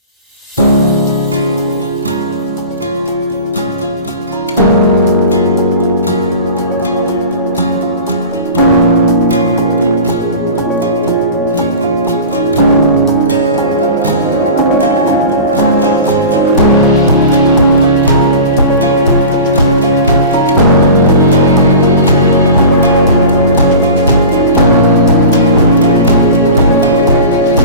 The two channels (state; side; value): inverted; both; correlation -0.35